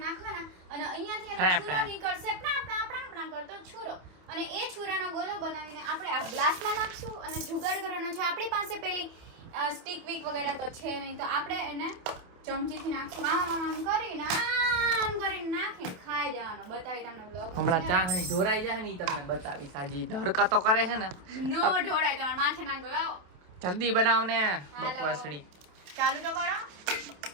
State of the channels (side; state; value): left; late; 27 ms